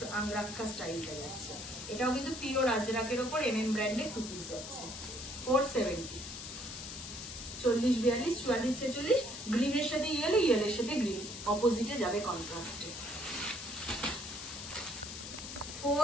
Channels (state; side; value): noise; left; hiss, 9 dB below the sound